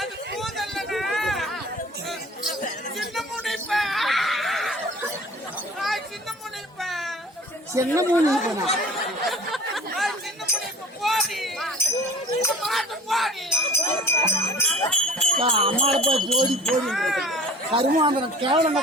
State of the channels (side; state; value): both; normal; correlation 0.45